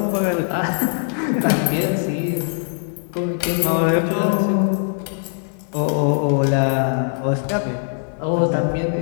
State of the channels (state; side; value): silent; right; digital silence